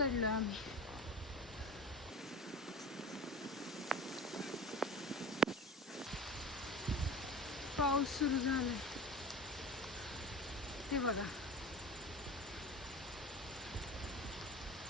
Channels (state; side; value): normal; both; correlation 0.34